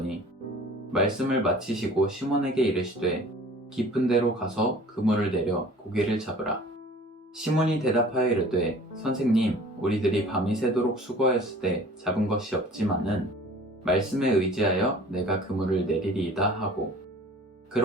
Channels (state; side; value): normal; both; correlation 0.47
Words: 말씀을 마치시고 시몬에게 이르시되 깊은 데로 가서 그물을 내려 고기를 잡으라. 시몬이 대답하여 이르되 선생님, 우리들이 밤이 새도록 수고하였으되 잡은 것이 없지만은 말씀에 의지하여 내가 그물을 내리리이다 하고,